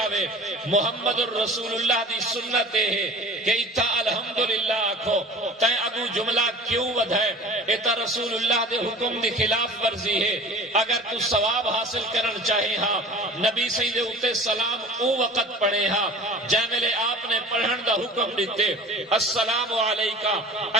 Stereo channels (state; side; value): normal; both; correlation 0.41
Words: محمد الرسول اللہ دی سنت ہے کہ اتھا الحمدللہ آکھو، تائیں اگو جملہ کیوں ودھائے؟ ایتا رسول اللہ دے حکم دی خلاف ورزی ہے۔ اگر تو ثواب حاصل کرن چاہے ہاں نبی سید اوتے سلام او وقت پڑھے ہاں جیملے آپ نے پڑھن دا حکم دیتے، السلام علیکہ